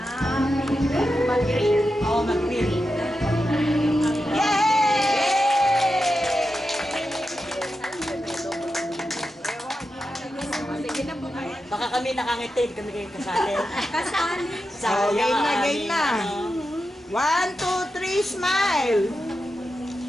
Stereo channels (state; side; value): normal; both; correlation 0.89